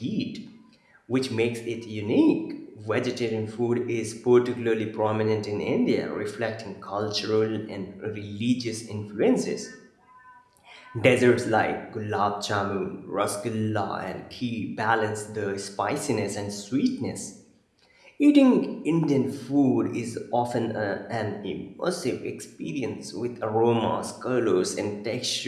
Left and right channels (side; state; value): both; identical; correlation 1.00